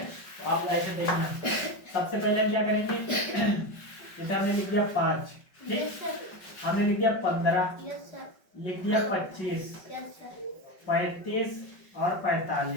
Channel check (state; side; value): late; right; 5.3 ms